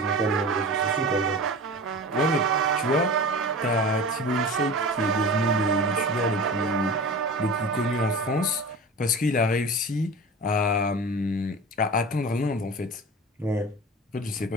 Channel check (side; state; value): both; normal; correlation 0.34